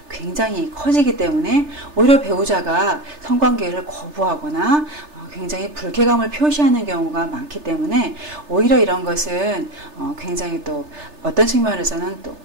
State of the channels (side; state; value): left; late; 3.3 ms